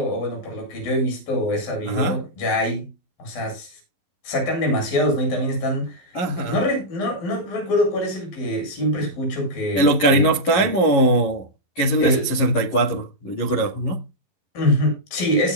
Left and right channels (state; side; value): late; right; 11 ms